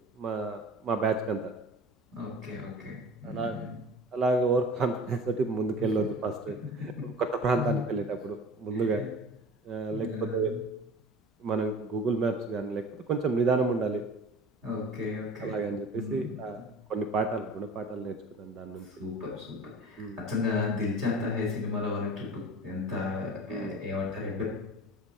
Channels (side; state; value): both; normal; correlation 0.40